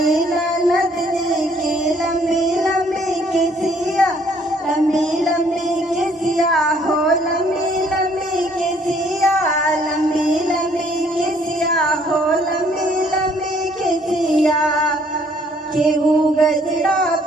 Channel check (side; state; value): both; normal; correlation 0.63